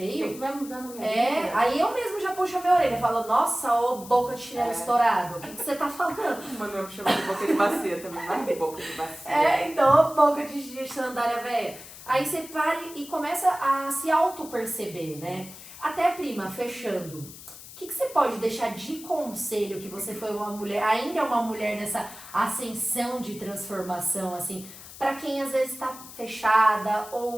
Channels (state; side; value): noise; left; hiss, 16 dB below the sound